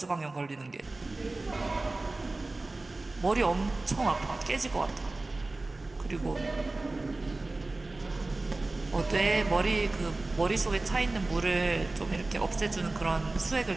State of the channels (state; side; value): quieter; left; 3.1 dB